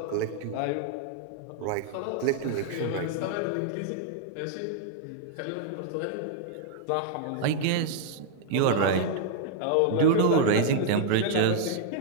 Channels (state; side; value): different; both; correlation 0.00